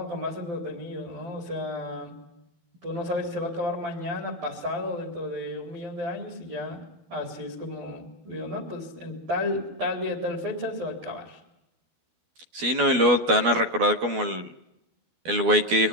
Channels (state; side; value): late; left; 12 ms